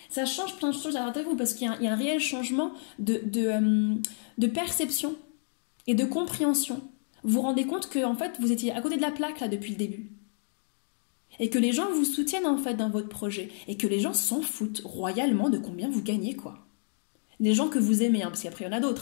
Ça change plein de choses à l'intérieur de vous parce qu'il y a un réel changement de perception et de compréhension. Vous vous rendez compte que en fait, vous étiez à côté de la plaque là depuis le début. Et que les gens vous soutiennent en fait dans votre projet. Et que les gens s'en foutent royalement de combien vous gagnez quoi. Les gens que vous aimez, parce qu'après il y en a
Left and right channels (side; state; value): right; silent; 58 dB below the other